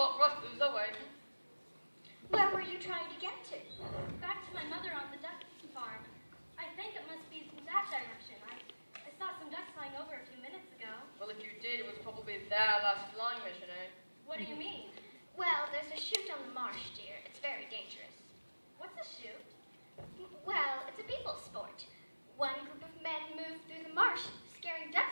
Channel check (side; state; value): both; inverted; correlation -1.00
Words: for us to lose our way. Where were you trying to get to? Back to my mother on the duck farm. I think it must be that direction. I saw some ducks flying over a few minutes ago. Well, if you did, it was probably their last flying mission, eh? What do you mean? Well, there's a chute on the marsh, dear. It's very dangerous. What's a chute? Well, it's a people sport. One group of men move through the marsh, scaring